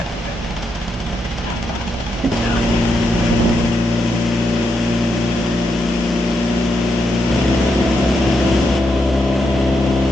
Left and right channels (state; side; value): normal; both; correlation 0.82